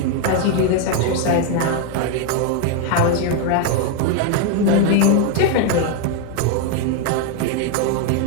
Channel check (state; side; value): different; both; correlation 0.01